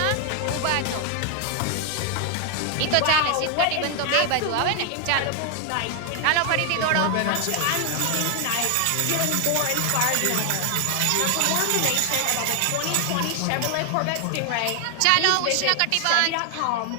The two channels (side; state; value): both; different; correlation 0.00